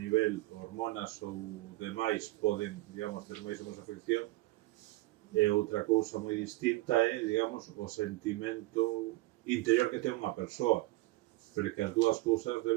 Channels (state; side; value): quieter; left; 19.2 dB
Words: hormonas ou demais poden, digamos, ter máis ou menos afección, e outra cousa moi distinta é, digamos, o sentimento interior que ten unha persoa, pero que as dúas cousas